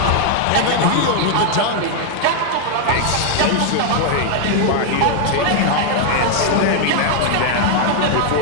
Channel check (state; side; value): different; both; correlation 0.00